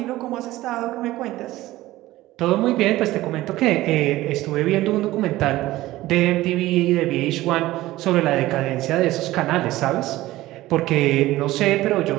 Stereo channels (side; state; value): left; quieter; 16.8 dB